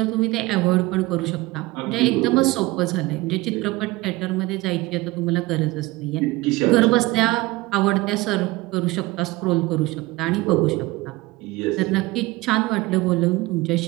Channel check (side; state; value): left; quieter; 20.5 dB